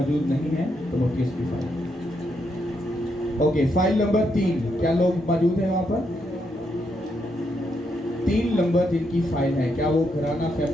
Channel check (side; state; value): both; normal; correlation 0.79